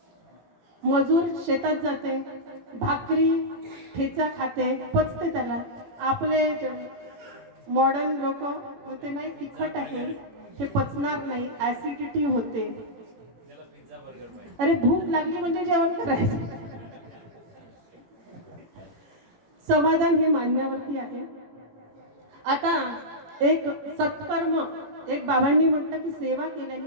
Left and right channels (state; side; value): late; left; 18 ms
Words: मजूर शेतात जाते, भाकरी ठेचा खाते, पचते त्याला. आपले मॉडर्न लोक म्हणते नाही तिखट आहे, हे पचणार नाही, ऍसिडिटी होते. अरे भूक लागली म्हणजे जेवण करायचं. समाधान हे मानण्यावरती आहे. आता एक सत्कर्म, एक बाबांनी म्हटलं की सेवा केल्याने